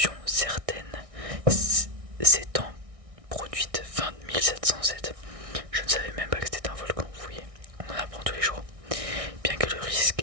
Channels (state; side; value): late; left; 1.6 ms